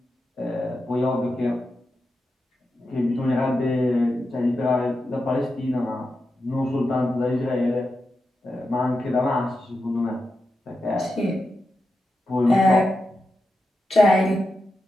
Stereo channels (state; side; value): normal; both; correlation 0.89